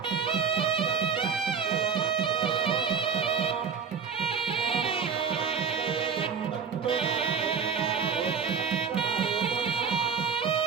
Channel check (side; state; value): left; quieter; 6.2 dB